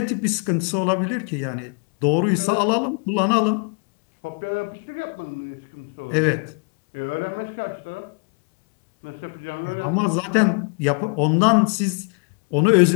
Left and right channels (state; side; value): quieter; right; 39.8 dB